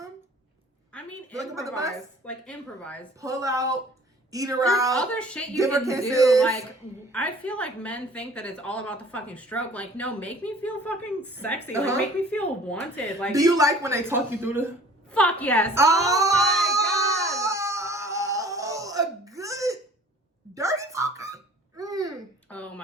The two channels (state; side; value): normal; both; correlation 0.49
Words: I mean, improvise. Like improvise. Pull out. Eat her There's out. Other shit you can do. Like, I feel like men think that it's all about the fucking stroke. Like, no, make me feel fucking sexy. Like, make me feel wanted. Like, do you like when they talk you through the? Fuck yes. Oh my god. A good dirty talker. Oh